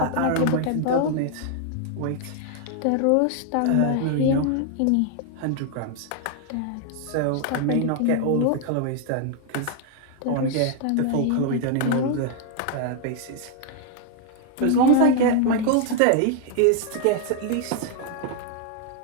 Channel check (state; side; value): different; both; correlation 0.00